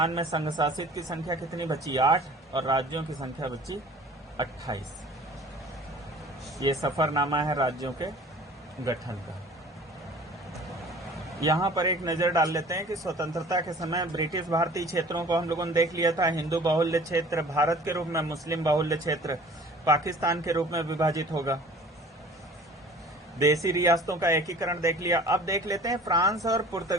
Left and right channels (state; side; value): normal; both; correlation 0.47